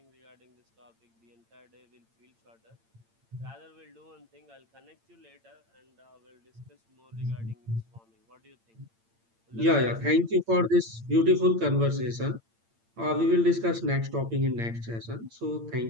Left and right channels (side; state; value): left; late; 8.8 ms